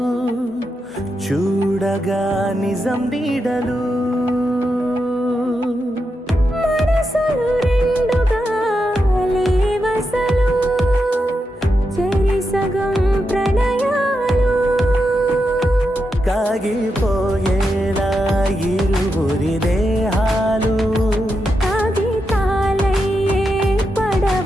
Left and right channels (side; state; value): both; normal; correlation 0.86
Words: చూడగా నిజం నీడలు మనసులు రెండుగా లేవసలు చెరి సగం ప్రణయాలు కాగిపోయేలా ఇరువురి దేహాలు కాగితాలయ్యే